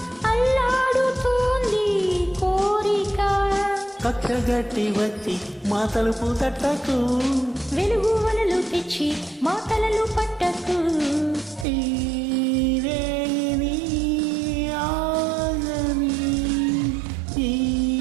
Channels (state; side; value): drops out; left; at 11.7 s